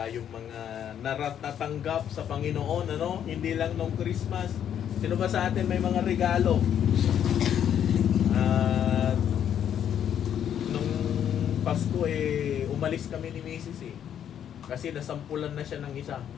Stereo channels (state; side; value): quieter; right; 9.4 dB